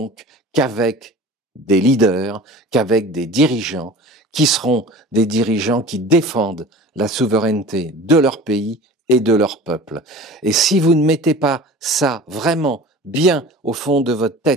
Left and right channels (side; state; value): both; normal; correlation 0.40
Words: qu'avec des leaders, qu'avec des dirigeants, qui seront des dirigeants qui défendent la souveraineté de leur pays et de leur peuple. Et si vous ne mettez pas ça vraiment bien au fond de votre